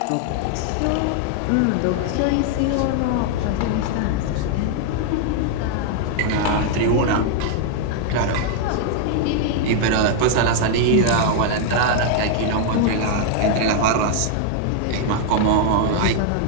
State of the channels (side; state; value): both; different; correlation 0.00